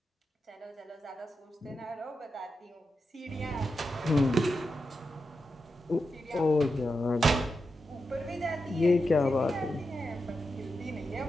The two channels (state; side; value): normal; both; correlation 0.88